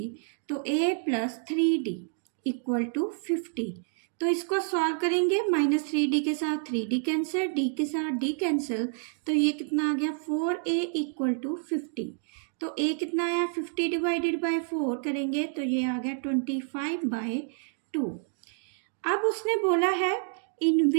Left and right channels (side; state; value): left; silent; digital silence